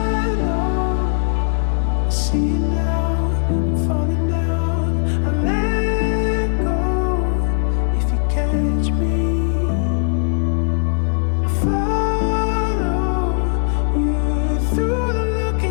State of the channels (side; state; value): right; silent; digital silence